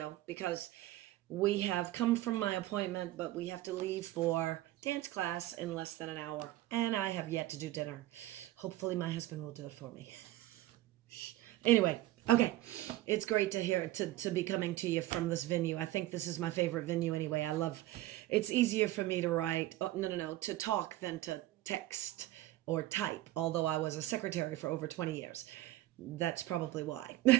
because we have come from my appointment, but we have to leave for dance class in less than an hour. And I have yet to do dinner. Hopefully my husband will do it for me. Anyway, okay. It's great to hear to be coming to you from this venue. I think this is my favorite venue anyway. It's easier for me to write, to talk than to text or type, although I was a secretary for over 20 years. That's probably why.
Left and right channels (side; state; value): left; quieter; 16.0 dB